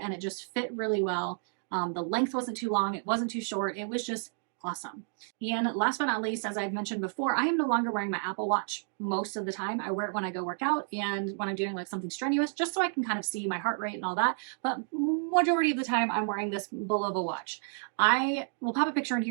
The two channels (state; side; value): silent; left; 57 dB below the other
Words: and it just fit really well. The length wasn't too long. It wasn't too short. It was just awesome. And last but not least, as I've mentioned before, I am no longer wearing my Apple Watch most of the time. I wear it when I go work out and when I'm doing like something strenuous, just so I can kind of see my heart rate and all that. But majority of the time I'm wearing this bull of a watch. I will pop a picture in